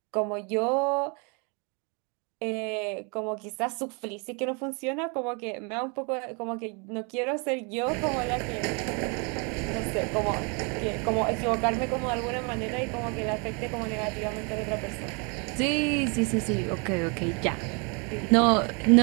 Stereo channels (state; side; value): quieter; left; 33.7 dB